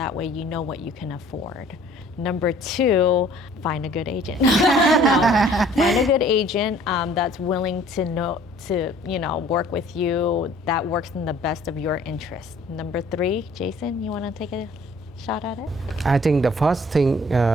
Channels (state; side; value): normal; both; correlation 0.54